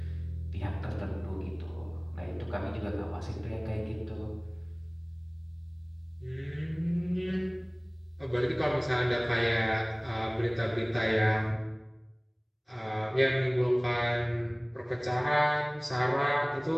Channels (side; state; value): both; identical; correlation 1.00